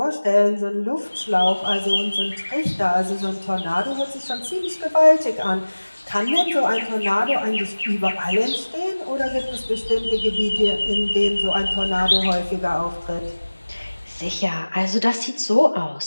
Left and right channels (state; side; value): inverted; both; correlation -1.00